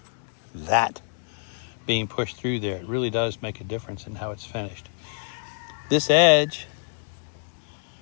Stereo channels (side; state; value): right; silent; digital silence